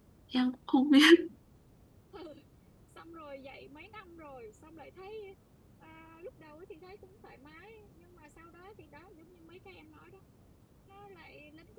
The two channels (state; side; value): identical; both; correlation 1.00